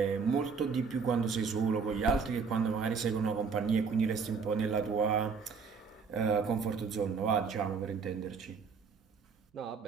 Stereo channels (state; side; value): quieter; left; 5.4 dB